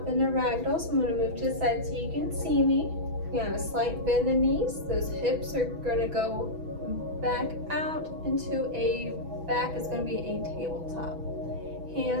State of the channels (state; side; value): late; left; 6.1 ms